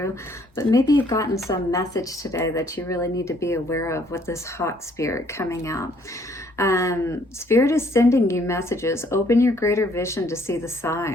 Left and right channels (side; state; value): both; normal; correlation 0.64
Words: But maybe you've gotten some message today that you really need to be aware of with this hot spirit coming out. Spirit is sending you messages. Open your greater vision to see the